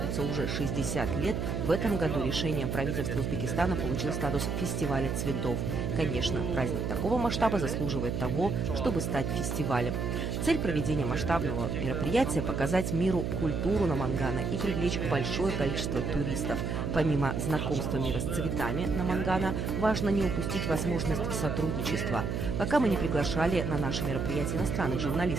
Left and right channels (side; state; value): right; noise; hum, 1 dB below the sound